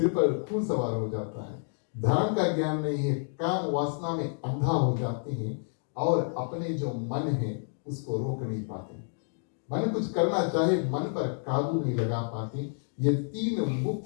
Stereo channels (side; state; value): right; silent; digital silence